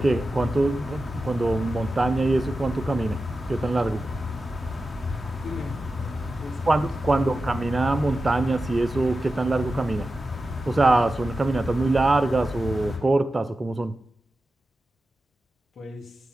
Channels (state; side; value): normal; both; correlation 0.93